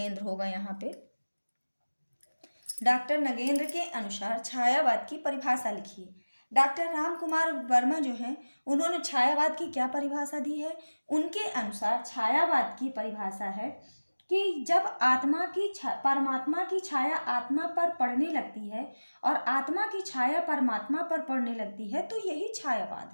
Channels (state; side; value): inverted; both; correlation -1.00